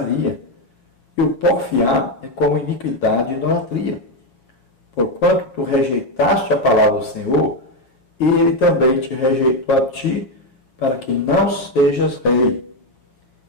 e o porfiar é como iniquidade e idolatria. Porquanto tu rejeitaste a palavra do Senhor, e ele também te rejeitou a ti, para que não sejas rei.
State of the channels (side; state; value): right; late; 7.8 ms